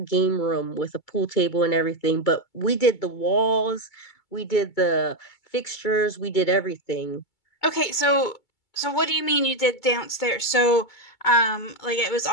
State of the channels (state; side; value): late; right; 2.3 ms